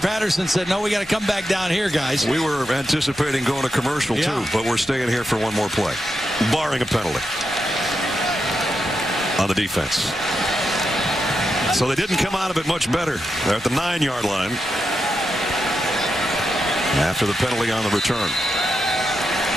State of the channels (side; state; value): both; normal; correlation 0.86